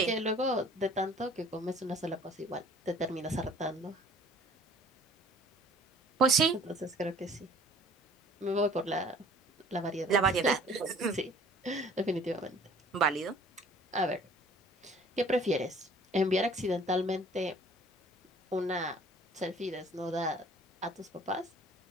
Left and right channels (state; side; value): normal; both; correlation 0.52